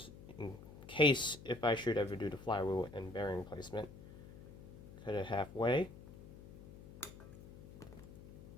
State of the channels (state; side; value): noise; left; hum, 16 dB below the sound